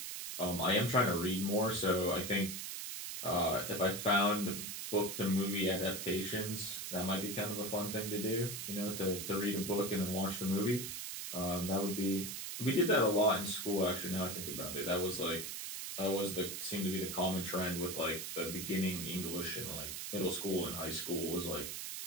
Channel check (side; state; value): right; noise; hiss, 6 dB below the sound